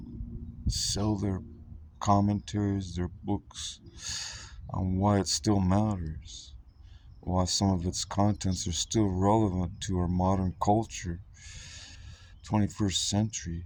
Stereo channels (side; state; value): both; identical; correlation 1.00